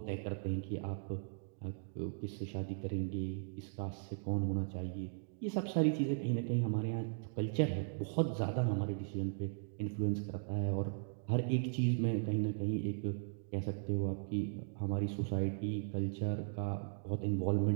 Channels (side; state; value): left; silent; digital silence